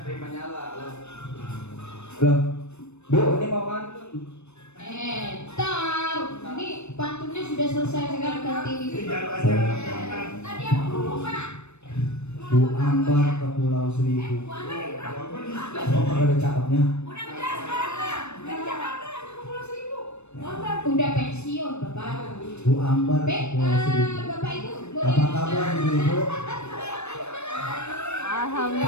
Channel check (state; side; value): late; right; 0.81 ms